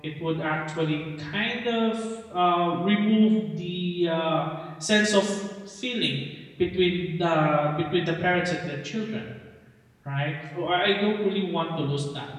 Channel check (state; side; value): identical; both; correlation 1.00